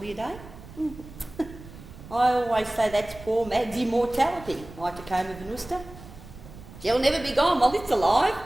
day. I always say that's poor Mad's immortality, my Tacoma Venusta. She'll never be gone while it's alive.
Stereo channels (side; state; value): right; noise; rumble, 17 dB below the sound